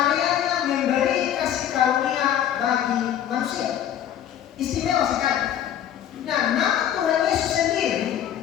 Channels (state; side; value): quieter; right; 10.5 dB